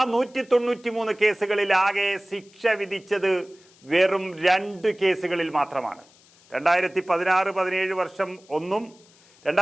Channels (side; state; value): left; noise; hiss, 28 dB below the sound